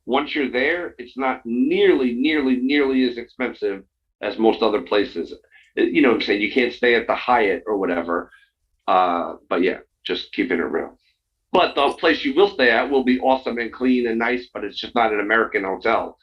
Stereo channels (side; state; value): both; identical; correlation 1.00